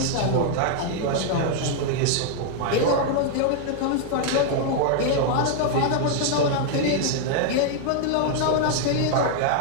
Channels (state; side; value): different; both; correlation 0.00